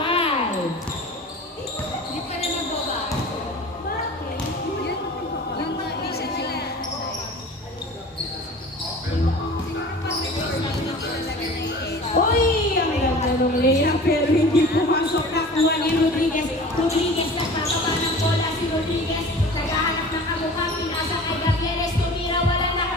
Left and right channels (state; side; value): normal; both; correlation 0.40